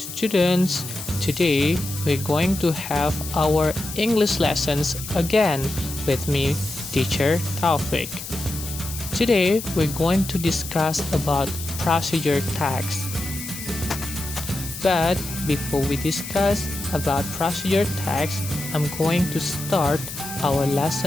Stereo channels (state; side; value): noise; left; hiss, 10 dB below the sound